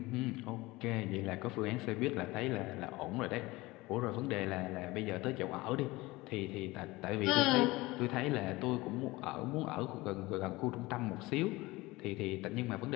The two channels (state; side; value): quieter; right; 20.8 dB